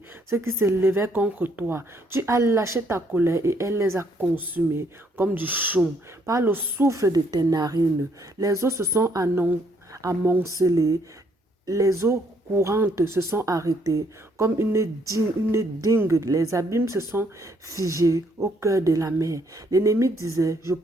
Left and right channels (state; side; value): normal; both; correlation 0.69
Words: ceux qui se levaient contre toi. Tu as lâché ta colère et elle les a consumés comme du chaume. Par le souffle de tes narines, les eaux se sont amoncelées. Les eaux courantes se sont arrêtées comme une dingue. Les abîmes se sont figés au cœur de la mer. L'ennemi disait, je